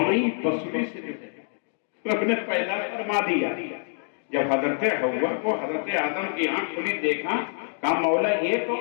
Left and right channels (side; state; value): right; silent; digital silence